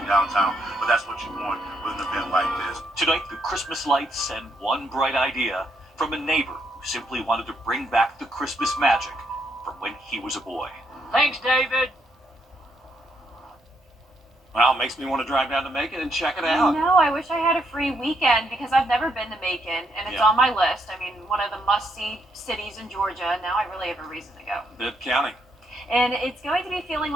downtown, but that's what you want with an event like this. Tonight, the Christmas lights and one bright idea from a neighbor who simply wanted to bring back the Christmas magic from when he was a boy. Thanks, David. Well, it makes me want to drive down to Macon and check it out. No, I wish I had a free weekend because I've never been to Macon, and it's on my list. I mean, one of the must-see cities in Georgia. Now I really have a reason to go. Bibb County. And it's going to be feeling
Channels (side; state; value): both; normal; correlation 0.76